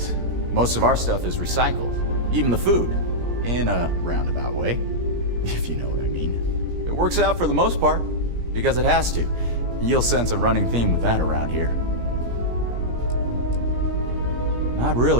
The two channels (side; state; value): left; late; 17 ms